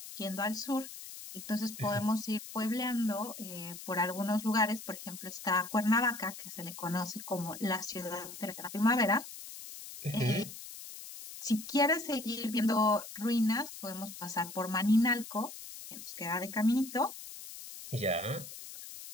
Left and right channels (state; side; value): noise; left; hiss, 12 dB below the sound